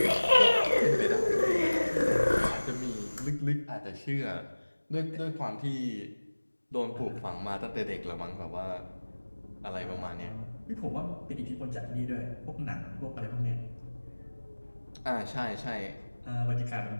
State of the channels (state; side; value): inverted; both; correlation -1.00